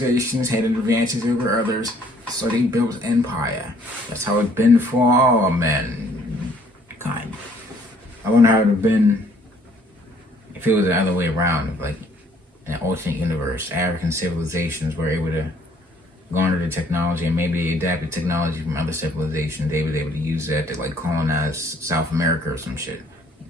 had advantages over others, so they built empire. That's how it's been for all mankind. I wonder how it would have been if it was the other way around. If, like, in an alternate universe, African civilizations were able to garner the technology and maybe adapted technology from other civilizations. They were able to use that to like colonize South America or some shit.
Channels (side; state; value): both; normal; correlation 0.62